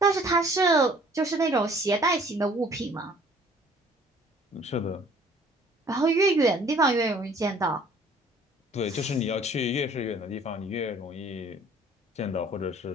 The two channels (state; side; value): normal; both; correlation 0.55